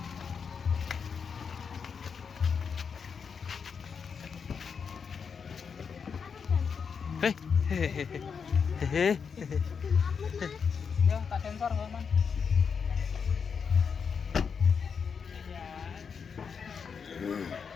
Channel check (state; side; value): quieter; right; 6.2 dB